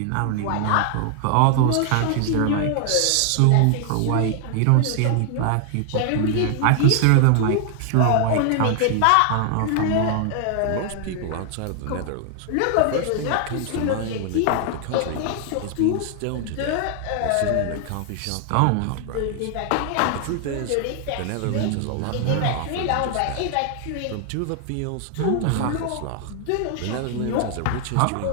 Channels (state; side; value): different; both; correlation 0.00